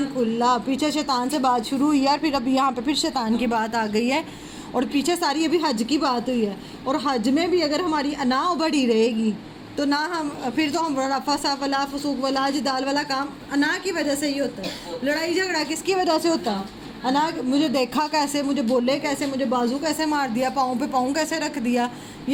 کھلا. پیچھے شیطان سے بات شروع ہوئی ہے اور پھر اب یہاں پہ پھر شیطان کی بات آ گئی ہے، اور پیچھے ساری ابھی حج کی بات ہوئی ہے. اور حج میں بھی اگر ہماری انا بڑی رہے گی تو نہ ہم پھر تو ہم رفث ولا فسوق ولا جدال والا کام انا کی وجہ سے ہی ہوتا ہے. لڑائی جھگڑا کس کی وجہ سے ہوتا ہے؟ انا. مجھے دیکھا کیسے، مجھے بولے کیسے، مجھے بازو کیسے مار دیا، پاؤں پہ پاؤں کیسے رکھ دیا،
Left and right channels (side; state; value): both; identical; correlation 1.00